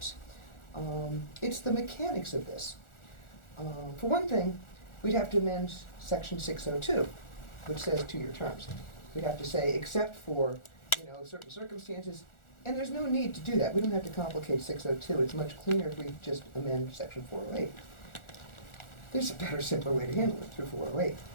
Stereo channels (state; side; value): late; right; 1.4 ms